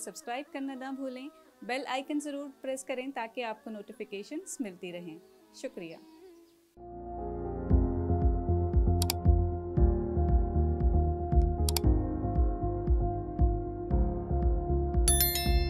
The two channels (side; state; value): both; identical; correlation 1.00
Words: کرنا نہ بھولیں۔ بیل آئیکن ضرور پریس کریں تاکہ آپ کو نوٹیفیکیشنز ملتی رہیں۔ شکریہ۔